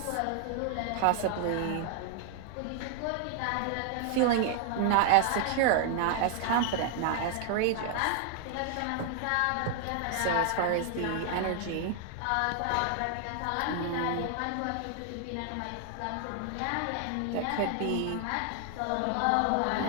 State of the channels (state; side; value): different; both; correlation 0.00